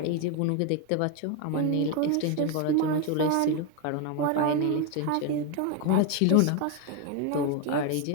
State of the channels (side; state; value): both; different; correlation 0.01